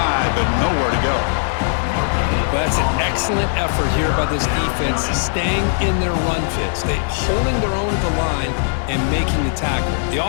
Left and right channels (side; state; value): right; silent; digital silence